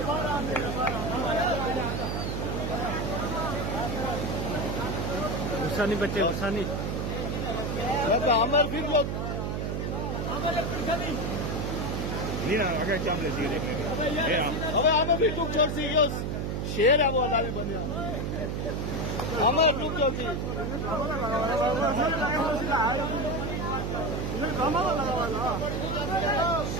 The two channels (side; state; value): right; noise; hum, 1 dB below the sound